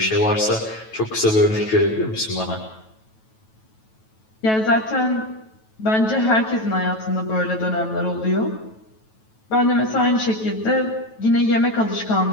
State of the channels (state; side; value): late; right; 9.2 ms